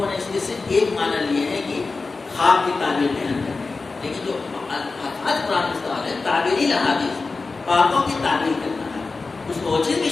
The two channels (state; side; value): quieter; right; 4.0 dB